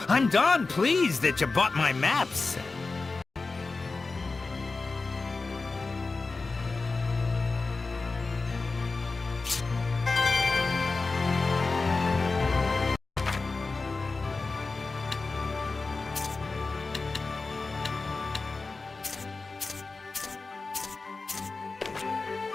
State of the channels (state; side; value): quieter; right; 3.9 dB